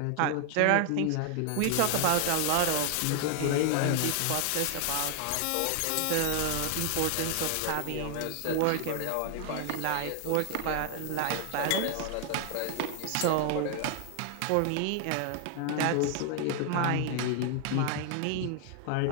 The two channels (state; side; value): different; both; correlation 0.00